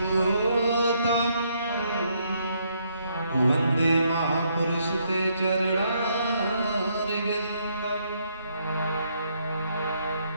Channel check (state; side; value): inverted; both; correlation -0.73